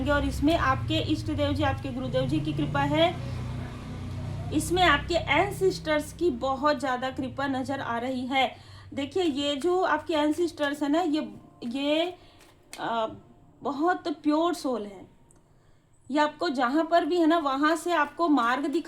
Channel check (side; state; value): both; identical; correlation 1.00